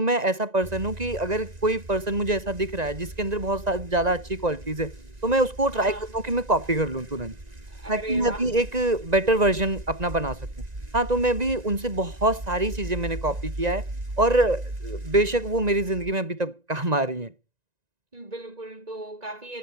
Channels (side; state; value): left; late; 1.9 ms